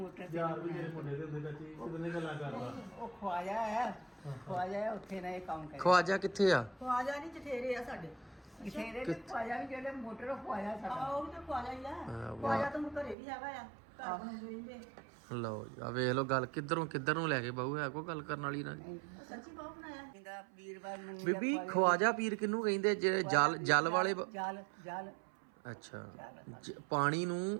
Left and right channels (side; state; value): left; drops out; at 13.2 s